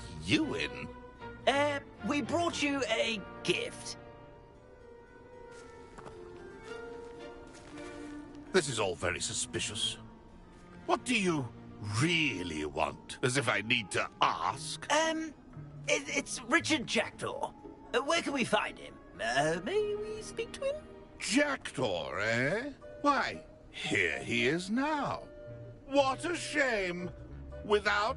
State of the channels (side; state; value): both; identical; correlation 1.00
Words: you in? We brought you a gift. This is all very suspicious. What do you really want? As if I need to ask. It's Richard Jackdaw. Where can we find him? May we speak to him? Jackdaw, eh? Why, here he is now. What a shame.